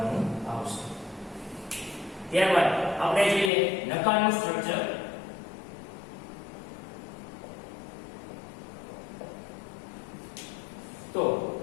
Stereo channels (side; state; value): right; drops out; at 3.5 s